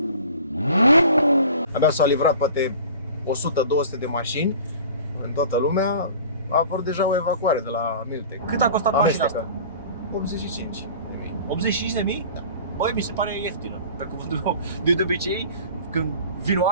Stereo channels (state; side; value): inverted; both; correlation -0.42